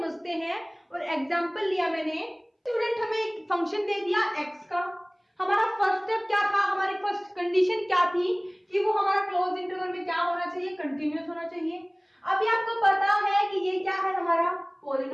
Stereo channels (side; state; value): both; identical; correlation 1.00